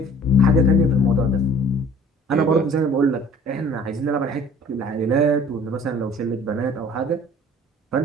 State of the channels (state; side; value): normal; both; correlation 0.50